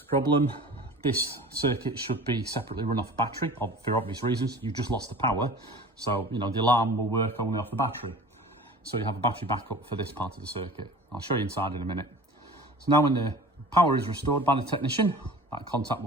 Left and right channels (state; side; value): normal; both; correlation 0.41